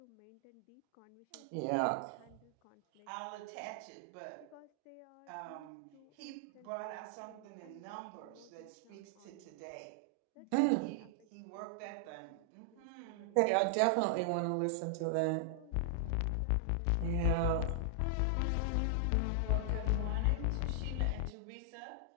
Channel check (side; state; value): both; different; correlation -0.01